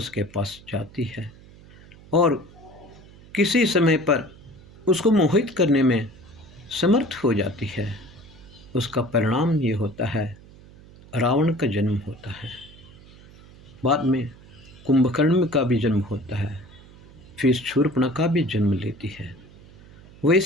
के पास जाती है और किसी समय पर उसको मोहित करने में समर्थ हो जाती है। उसका परिणाम ये होता है, रावण का जन्म होता है। बाद में कुंभकर्ण का भी जन्म होता है, फिर शूर्पणखा भी जन्म लेती है।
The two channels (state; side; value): noise; right; hum, 22 dB below the sound